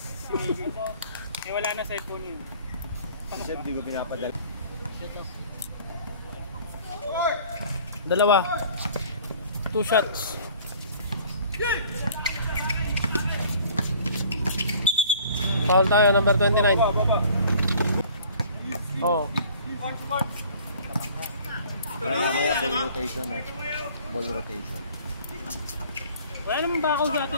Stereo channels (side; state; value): both; inverted; correlation -0.51